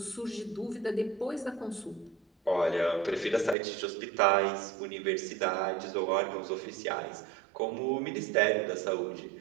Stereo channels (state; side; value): drops out; left; at 3.6 s